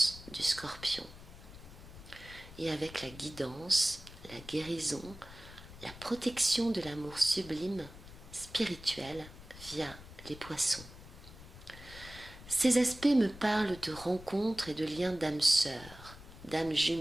du Scorpion. Et avec la guidance, la guérison, la protection de l'amour sublime, spirituel, via les Poissons. Ces aspects me parlent de rencontres et de liens d'âmes sœurs, d'âmes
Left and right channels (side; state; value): left; noise; rumble, 17 dB below the sound